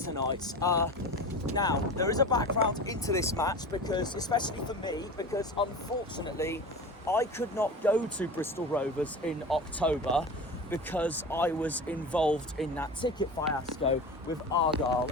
Now, there is a background into this match, because, especially for me, because unfortunately, I could not go to Bristol Rovers in October because I was involved in that ticket fiasco with Argyle,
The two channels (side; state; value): both; normal; correlation 0.32